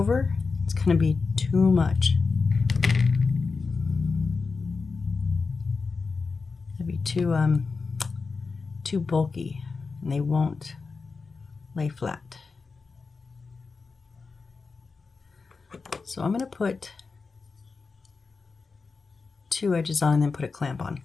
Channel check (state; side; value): quieter; right; 4.5 dB